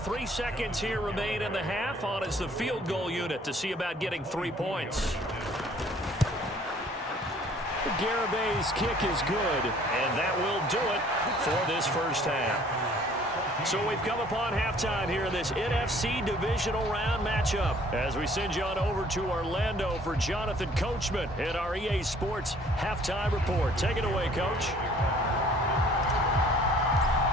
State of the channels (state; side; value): normal; both; correlation 0.56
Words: seconds here remain in the half. On is the field goal unit to see about getting 3 points. Garabay's kick is good, and that will do it for this first half. So we've come upon halftime here in this NFC divisional round matchup as we send you on over to Orlando for Jonathan Coachman in our EA Sports halftime report. Take it away, Coach.